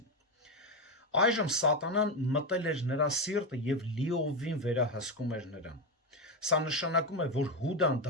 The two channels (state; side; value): normal; both; correlation 0.11